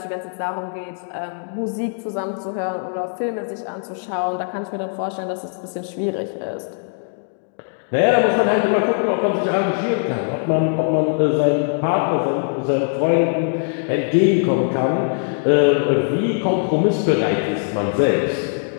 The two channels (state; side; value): silent; right; digital silence